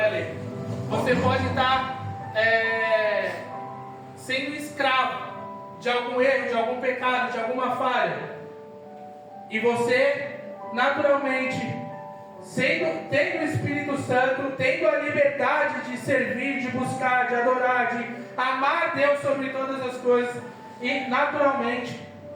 lei. Você pode estar sendo escravo de algum erro, de algum pecado, de alguma falha. E você, naturalmente, tendo o Espírito Santo, tendo a liberdade de servir, de buscar, de adorar, de amar Deus sobre todas as coisas, e naturalmente,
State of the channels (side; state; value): both; identical; correlation 1.00